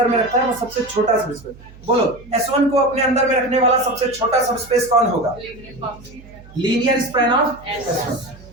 में रखता है वो सबसे छोटा सबस्पेस। बोलो S1 को अपने अंदर में रखने वाला सबसे छोटा सबस्पेस कौन होगा? Linear span of S1।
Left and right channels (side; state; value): right; noise; hum, 21 dB below the sound